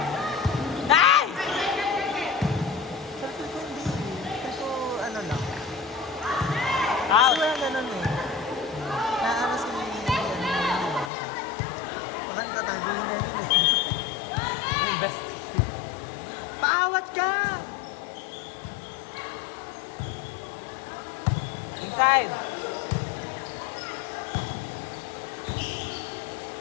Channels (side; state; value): right; drops out; at 11.1 s